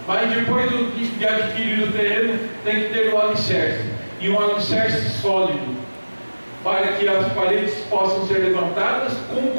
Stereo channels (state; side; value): inverted; both; correlation -1.00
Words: Mas depois de adquirir o terreno, tem que ter o alicerce, e um alicerce sólido, para que as paredes possam ser levantadas com